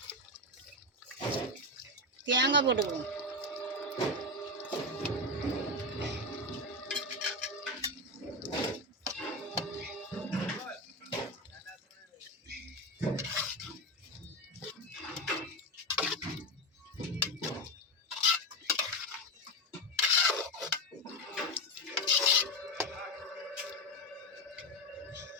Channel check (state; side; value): normal; both; correlation 0.13